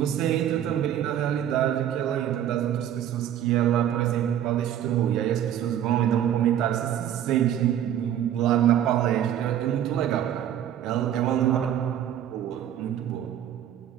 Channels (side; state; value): left; quieter; 10.6 dB